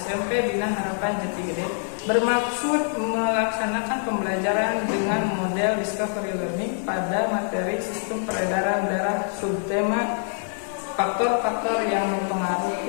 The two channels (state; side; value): silent; right; digital silence